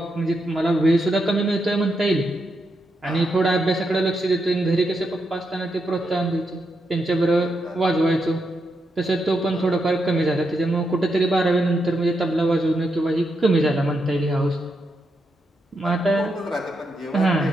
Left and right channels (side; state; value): both; normal; correlation 0.83